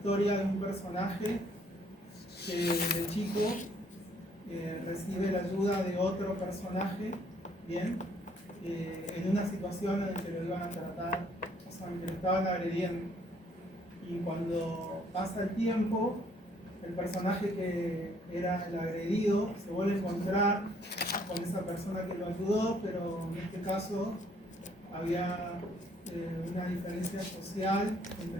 de un personaje que de chico recibe la ayuda de otro personaje, ¿bien? En una situación en la que lo iban a tratar, o sea, en que lo estaban agrediendo. Y cuando pasa el tiempo, el personaje que era el agredido se vuelve a encontrar con esa persona que lo ayudó, pero en este caso había una diferencia social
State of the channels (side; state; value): both; normal; correlation 0.64